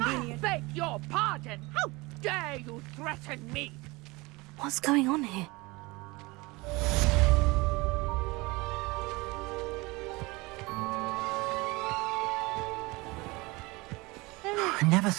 I beg your pardon! How dare you threaten me? What's going on here? I never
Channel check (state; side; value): quieter; left; 23.6 dB